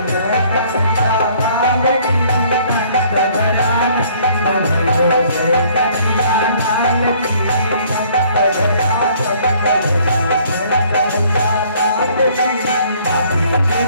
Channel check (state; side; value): inverted; both; correlation -0.59